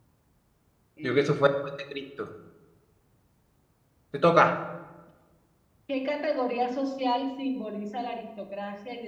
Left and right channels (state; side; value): identical; both; correlation 1.00